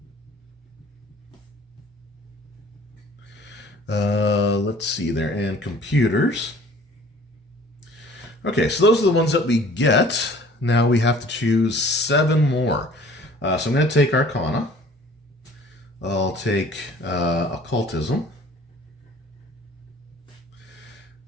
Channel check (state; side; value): normal; both; correlation 0.51